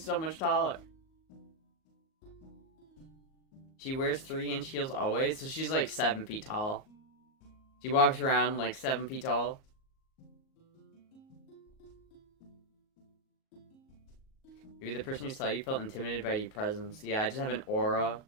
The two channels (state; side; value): late; right; 38 ms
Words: so much taller. She wears 3-inch heels always, so she's like 7 feet tall. She walks around like 7 feet tall. Maybe the person who saw you felt intimidated by your presence. Yeah, I just have an aura.